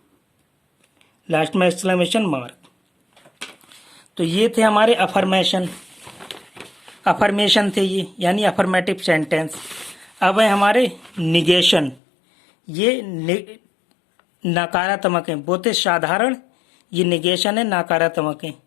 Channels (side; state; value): right; drops out; at 12.0 s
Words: लास्ट में एक्सक्लेमेशन मार्क। तो ये थे हमारे अफर्मेशन थे ये, यानी अफर्मेटिव सेंटेंस। अब है हमारे निगेशन, ये नकारात्मक है, बहुत साधारण ये निगेशन है, नकारात्मक है।